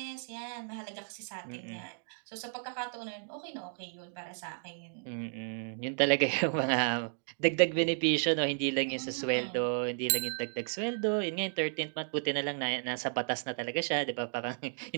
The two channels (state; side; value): silent; left; digital silence